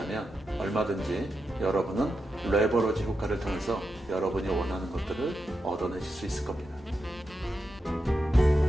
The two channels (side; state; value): both; normal; correlation 0.87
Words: 얼마든지 여러분은 레버러지 효과를 통해서 여러분이 원하는 것들을 얻어내실 수 있을 겁니다.